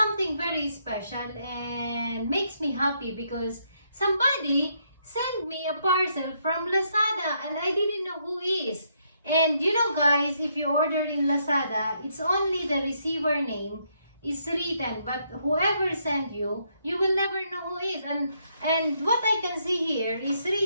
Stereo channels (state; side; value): inverted; both; correlation -0.75